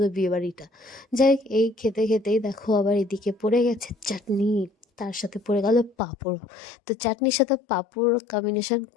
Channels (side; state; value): right; drops out; at 6.0 s